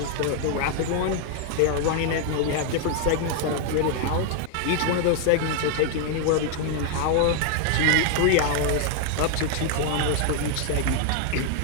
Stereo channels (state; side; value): different; both; correlation 0.00